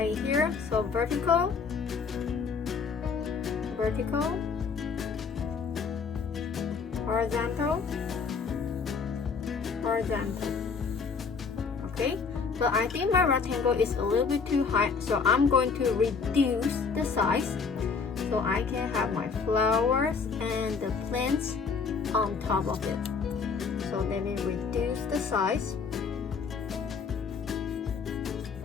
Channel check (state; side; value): quieter; right; 5.3 dB